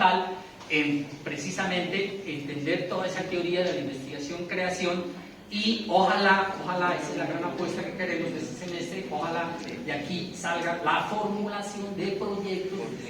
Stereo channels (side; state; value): both; identical; correlation 1.00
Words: en precisamente entender toda esa teoría de la investigación-creación y ojalá, esa es la gran apuesta que queremos de este semestre, ojalá de aquí salga la formulación de proyectos, del